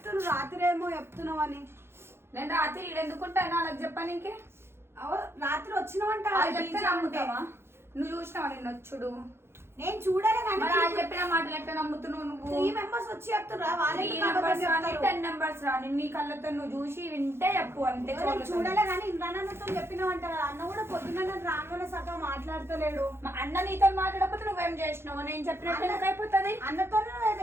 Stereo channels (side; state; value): left; late; 0.12 ms